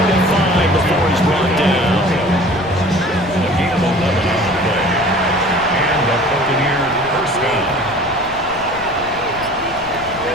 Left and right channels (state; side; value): noise; left; rumble, 18 dB below the sound